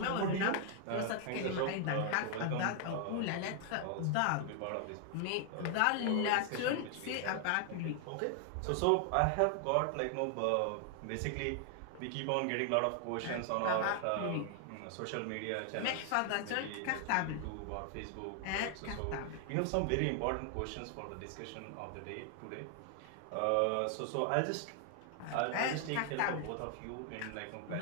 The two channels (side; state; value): both; different; correlation 0.00